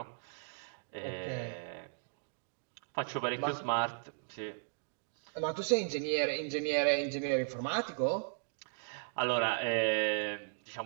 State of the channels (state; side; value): silent; left; digital silence